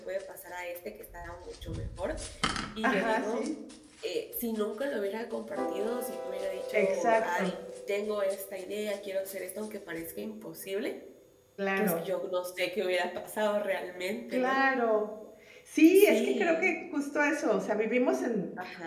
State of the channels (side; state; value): both; identical; correlation 1.00